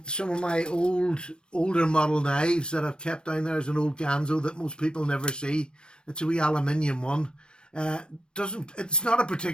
some of my older model knives that I've kept down there is an old Ganzo that most people never see. It's a wee aluminium one. It's not a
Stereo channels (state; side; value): late; right; 0.054 ms